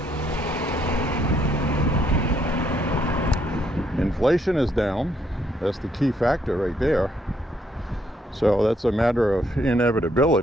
Inflation is down. That's the key factor right there. So that's a matter of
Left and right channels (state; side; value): normal; both; correlation 0.71